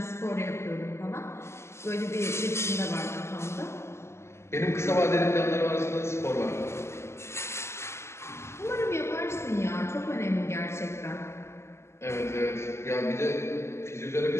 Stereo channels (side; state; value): right; late; 0.13 ms